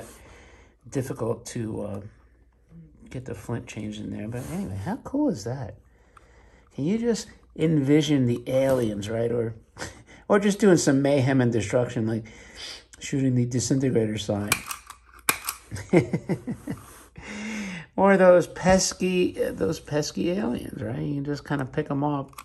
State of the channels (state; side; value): identical; both; correlation 1.00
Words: difficult to get the flint changed in there. But anyway, how cool is that? Can you just envision the aliens, right? Or just doing some mayhem and destruction, like shooting the disintegrator sign. Or those pesky aliens, right? You can just kind of pick them off.